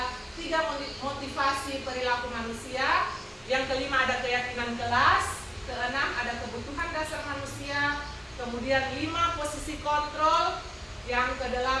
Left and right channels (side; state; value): both; identical; correlation 1.00